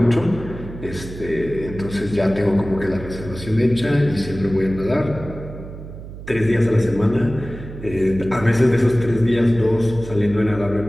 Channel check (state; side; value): noise; right; hum, 13 dB below the sound